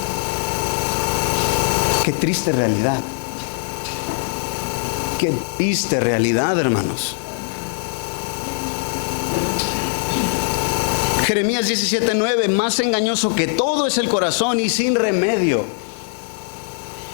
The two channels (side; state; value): right; silent; digital silence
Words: Qué triste realidad. Qué triste realidad, hermanos. Jeremías 17:9, más engañoso que todo es el corazón y sin remedio.